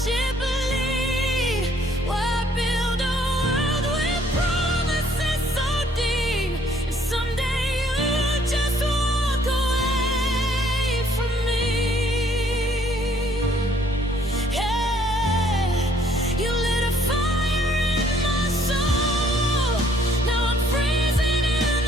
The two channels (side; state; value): both; normal; correlation 0.63